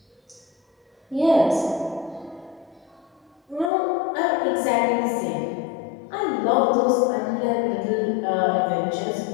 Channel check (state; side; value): drops out; right; at 3.7 s